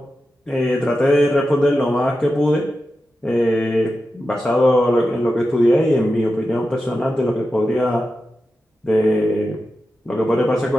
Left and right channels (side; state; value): both; normal; correlation 0.91